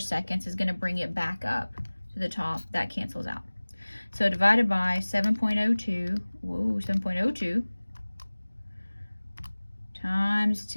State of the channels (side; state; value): both; inverted; correlation -1.00